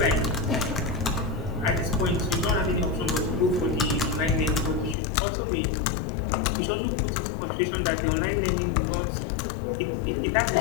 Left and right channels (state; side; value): drops out; right; at 5.0 s